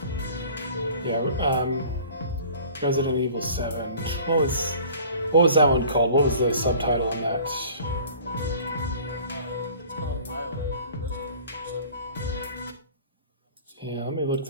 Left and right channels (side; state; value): both; inverted; correlation -0.47